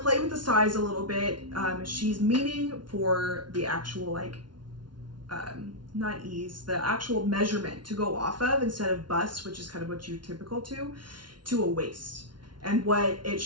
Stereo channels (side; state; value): left; late; 0.71 ms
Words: with the size a little bit. She's meaning for the actual like, not ease, the actual measurement to go off of instead of bust, which is kind of what you're typical to a waist. And what it